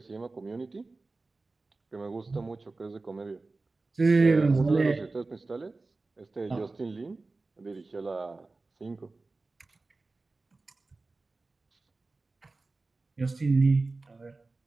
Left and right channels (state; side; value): quieter; left; 3.5 dB